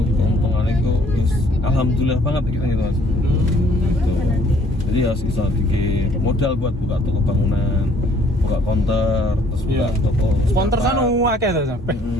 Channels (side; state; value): both; normal; correlation 0.61